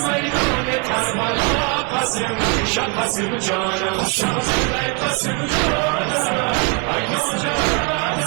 میدان کربلا قاسم شاه قاسم جانم شاه قاسم جانم ای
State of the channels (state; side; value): quieter; left; 29.6 dB